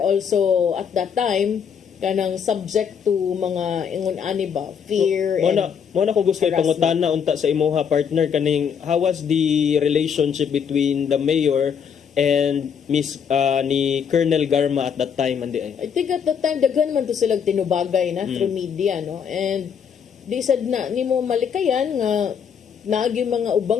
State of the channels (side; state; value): right; quieter; 7.3 dB